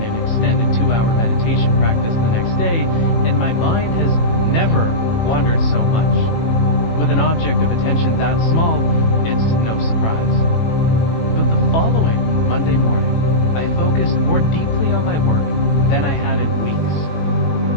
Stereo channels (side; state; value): right; late; 18 ms